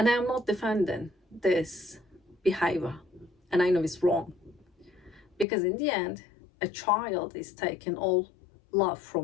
I am not defending this behavior. And I know it's wrong. Because in the end, a child is taking all love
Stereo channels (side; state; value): right; drops out; at 5.5 s